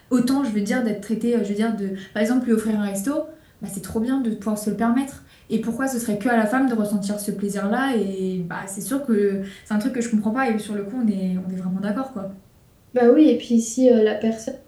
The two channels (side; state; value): both; identical; correlation 1.00